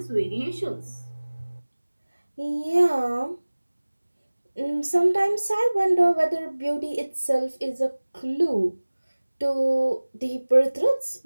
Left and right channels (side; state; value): both; inverted; correlation -1.00